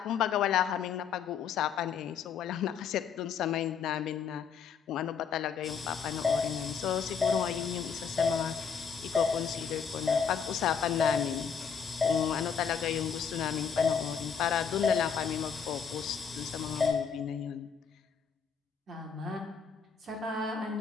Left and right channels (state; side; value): quieter; right; 6.8 dB